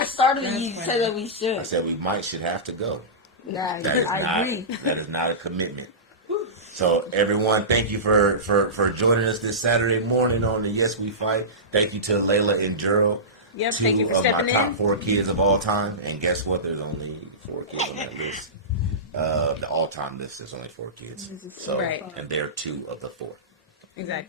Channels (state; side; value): normal; both; correlation -0.19